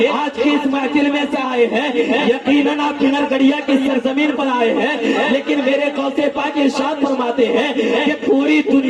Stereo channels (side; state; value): both; identical; correlation 1.00